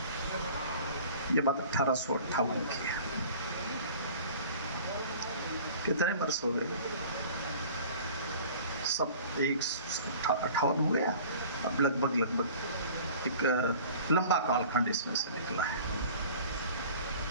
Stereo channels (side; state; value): both; inverted; correlation -0.45